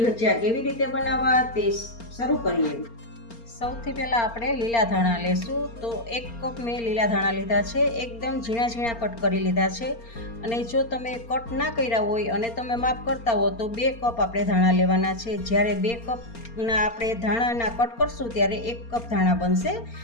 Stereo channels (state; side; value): late; right; 4.3 ms